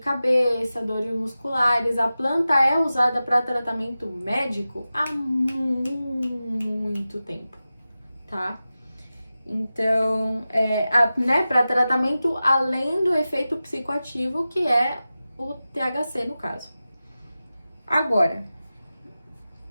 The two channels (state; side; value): inverted; both; correlation -0.94